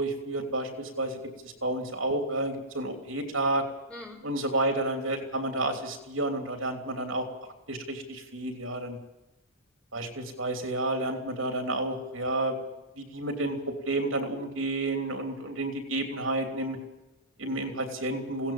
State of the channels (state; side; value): normal; both; correlation -0.20